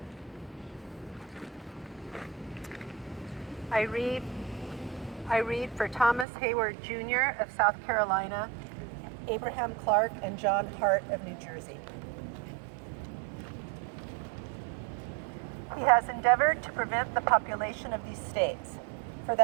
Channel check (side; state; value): left; drops out; at 6.2 s